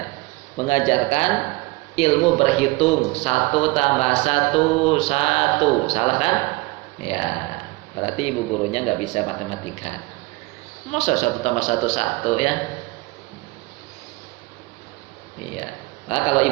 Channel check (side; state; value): left; quieter; 23.1 dB